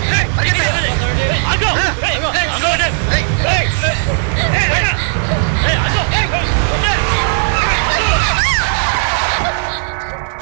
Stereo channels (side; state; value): left; silent; 65 dB below the other